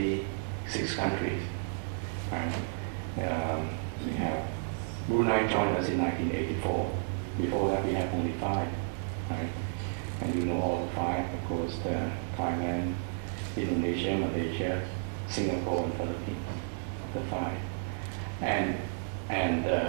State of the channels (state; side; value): silent; left; digital silence